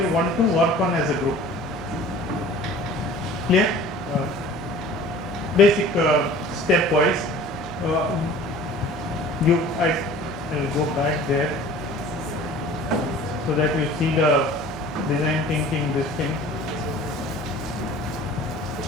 want to work on as a group. Clear? Basic stepwise. I will go back there so that you see the design thinking, this thing.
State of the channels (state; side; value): normal; both; correlation 0.45